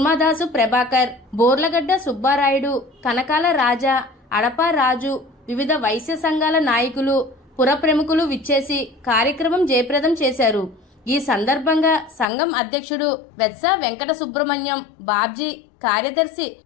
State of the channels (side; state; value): right; drops out; at 12.2 s